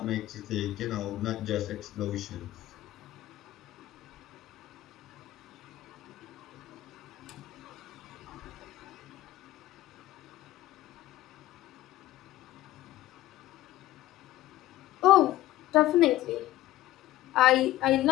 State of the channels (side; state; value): right; quieter; 15.3 dB